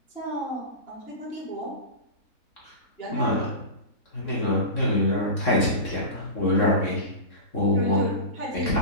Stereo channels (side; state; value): right; late; 3.6 ms